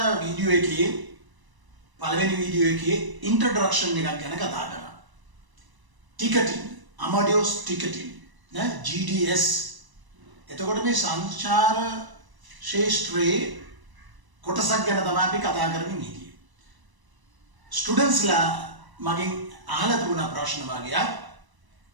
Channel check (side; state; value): left; late; 1.0 ms